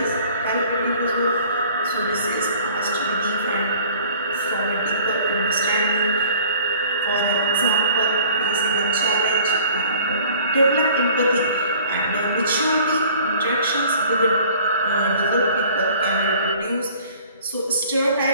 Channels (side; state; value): both; inverted; correlation -0.51